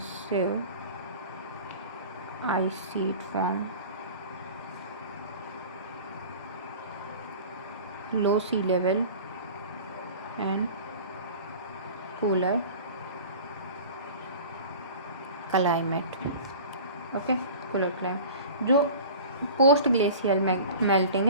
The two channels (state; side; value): inverted; both; correlation -0.39